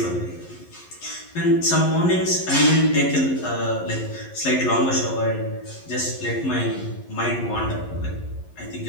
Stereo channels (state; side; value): late; right; 11 ms